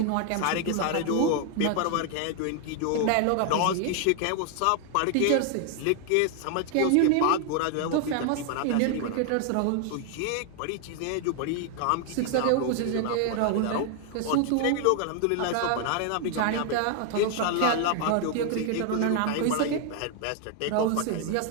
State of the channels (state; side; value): different; both; correlation 0.00